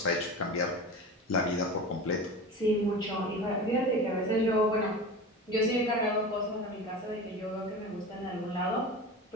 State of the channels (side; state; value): both; normal; correlation 0.31